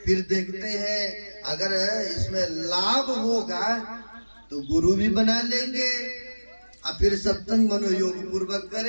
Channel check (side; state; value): both; inverted; correlation -1.00